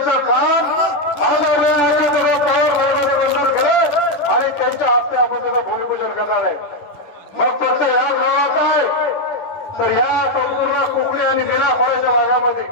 काम आणि त्यांच्या हस्ते आपण त्याचं भूमिपूजन करणार आहे। मग फक्त या गावात आहे तर या संपूर्ण कोकणी आणि मिराखोऱ्याच्या भागामध्ये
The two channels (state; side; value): late; right; 10 ms